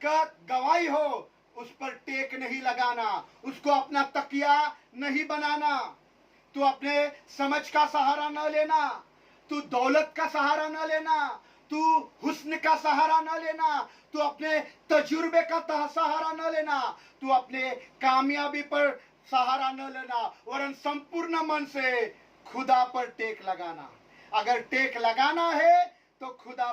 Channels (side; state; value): both; identical; correlation 1.00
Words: गवाही हो, उस पर टेक नहीं लगाना, उसको अपना तकिया नहीं बनाना। तू अपने समझ का सहारा न लेना, तू दौलत का सहारा न लेना, तू हुस्न का सहारा न लेना, तू अपने तजुर्बे का सहारा न लेना, तू अपने कामयाबी पर सहारा न लेना, वरन संपूर्ण मन से खुदा पर टेक लगाना। अगर टेक लगाना है तो खुदा